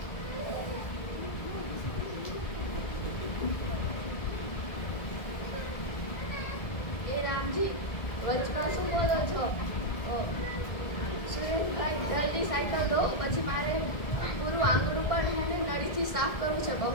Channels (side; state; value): right; late; 1.7 ms